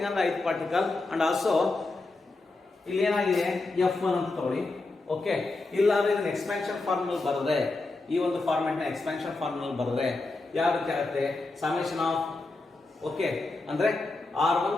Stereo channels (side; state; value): right; quieter; 3.3 dB